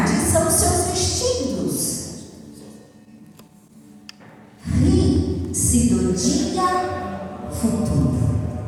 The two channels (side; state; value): both; identical; correlation 1.00